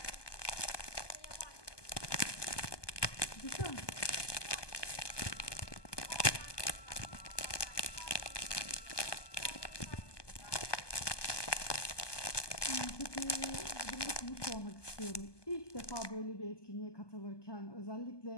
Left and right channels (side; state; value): right; late; 1.2 ms